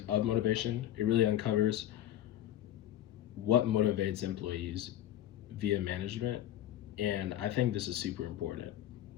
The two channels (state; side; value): quieter; right; 12.3 dB